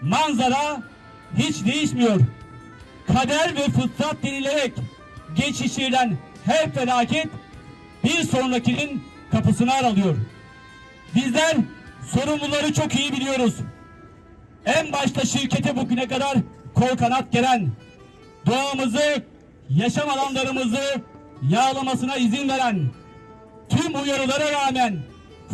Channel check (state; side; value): identical; both; correlation 1.00